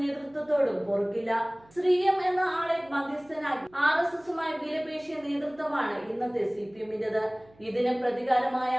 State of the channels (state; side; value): noise; right; hum, 28 dB below the sound